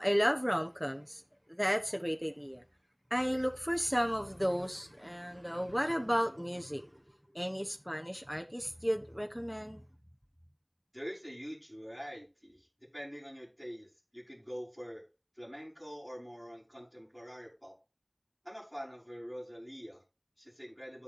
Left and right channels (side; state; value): both; identical; correlation 1.00